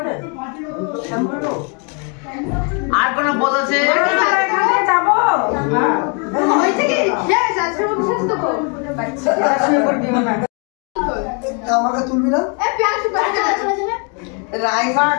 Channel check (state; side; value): quieter; right; 36.7 dB